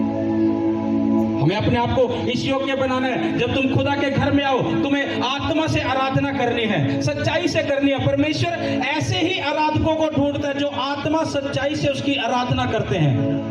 हमें अपने आप को इस योग्य बनाना है। जब तुम खुदा के घर में आओ, तुम्हें आत्मा से आराधना करनी है, सच्चाई से करनी है। परमेश्वर ऐसे ही आराधकों को ढूंढता है जो आत्मा सच्चाई से उसकी आराधना करते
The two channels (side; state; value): both; identical; correlation 1.00